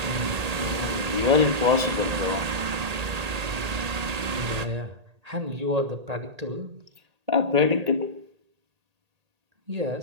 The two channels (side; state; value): left; late; 1.8 ms